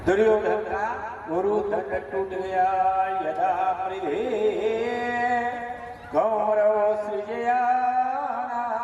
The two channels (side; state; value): both; identical; correlation 1.00